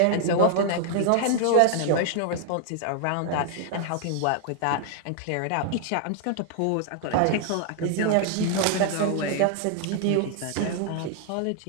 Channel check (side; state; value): both; different; correlation 0.00